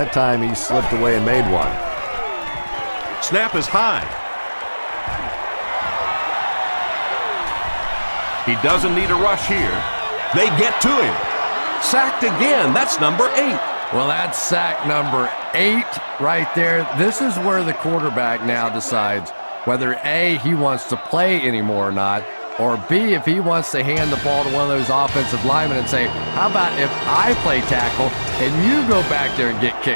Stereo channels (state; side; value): inverted; both; correlation -1.00